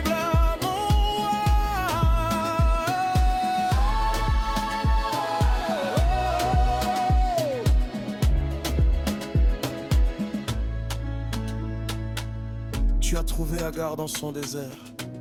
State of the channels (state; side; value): identical; both; correlation 1.00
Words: à mon roi. Tu as trouvé Agar dans son désert.